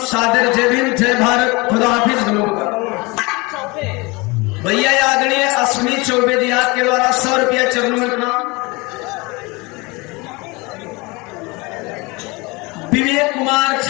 सादर जय भीम, जय भारत, खुदा हाफिज। भैया आदरणीय अश्विनी चौबे जी के द्वारा 100 रुपया चरणों में प्रणाम। विवेक कुमार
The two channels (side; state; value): right; quieter; 25.5 dB